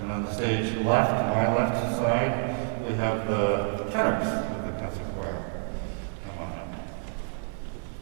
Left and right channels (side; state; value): left; silent; digital silence